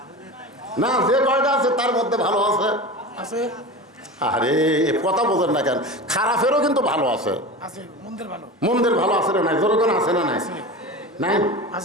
না, যে কয়টা আছে তার মধ্যে ভালো আছে। আছে। আরে কথা বোঝেন না কেন? খারাপেরও কিন্তু ভালো আছে। আছে, মন্দির ভালো। মন্দির ভালো আছে না নাই? যেরকম আছে না নাই? নাই?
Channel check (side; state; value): both; normal; correlation 0.30